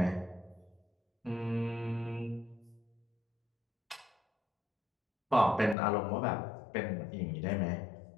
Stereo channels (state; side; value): drops out; right; at 5.8 s